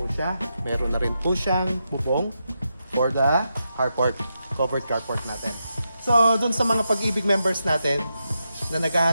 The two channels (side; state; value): both; inverted; correlation -0.86